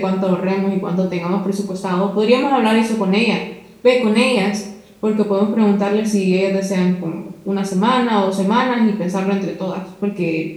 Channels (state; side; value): identical; both; correlation 1.00